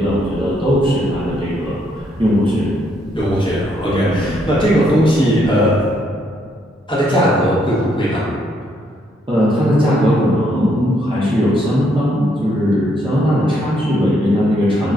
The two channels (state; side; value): normal; both; correlation 0.73